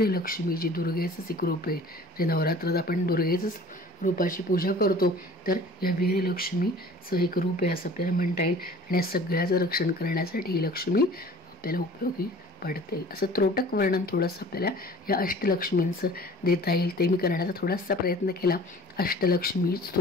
जी दुर्गेचंच एक रूप आहे. जे नवरात्रात आपण दुर्गेचंच रूपाची पूजा करतो तर या वीरलक्ष्मीचं एक रूप आहे असं आपल्याला म्हणता येईल. आणि या सगळ्याचं रक्षण करण्यासाठी ही लक्ष्मी आपल्याला उपयोगी पडते. असं त्रोटक वर्णन थोडंसं आपल्याला या अष्टलक्ष्मींचं देता येईल, ते मी करण्याचा थोडासा प्रयत्न केला. अष्टलक्ष्मी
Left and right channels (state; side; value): normal; both; correlation 0.47